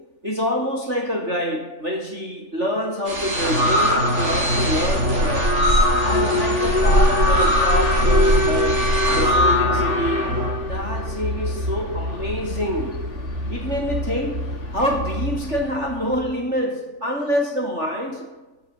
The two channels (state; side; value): late; left; 3.4 ms